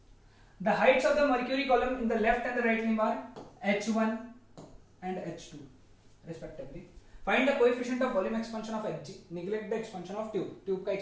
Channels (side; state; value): both; identical; correlation 1.00